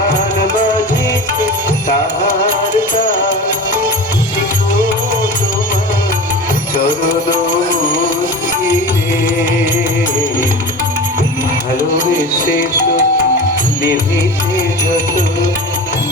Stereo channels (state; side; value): normal; both; correlation 0.33